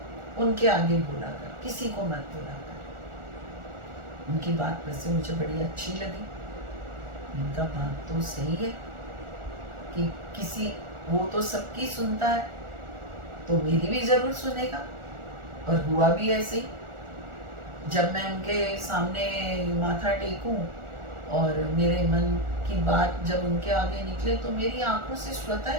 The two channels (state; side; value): late; left; 1.4 ms